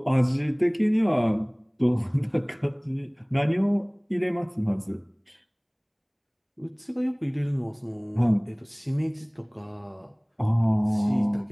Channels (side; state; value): both; identical; correlation 1.00